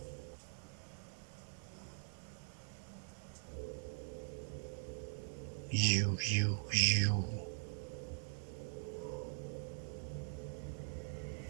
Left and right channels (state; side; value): silent; left; digital silence